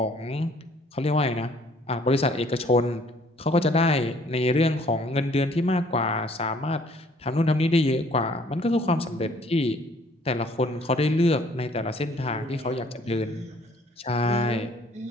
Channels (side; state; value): both; normal; correlation 0.59